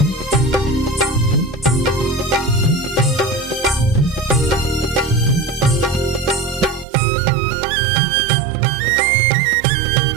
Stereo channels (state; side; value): drops out; left; at 6.9 s